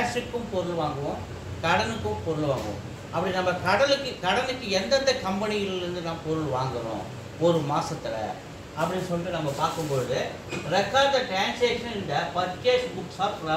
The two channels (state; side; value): identical; both; correlation 1.00